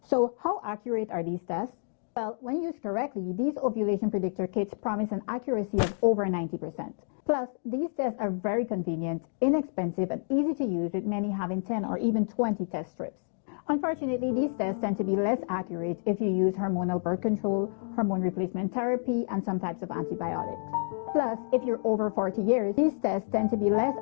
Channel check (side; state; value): right; silent; digital silence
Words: how accurate are these tests? Well, when used correctly, these ovulation predictor kits promise an accuracy of over 90%. Plus, these tests are very convenient, inexpensive, and easy to use, with many having 10 or even 20 test strips. Unfortunately, these tests tend to be less accurate if you use hormonal birth control, hormone replacement therapy, and some types of antibiotics. Plus, if you're over 40 years, these tests tend to be less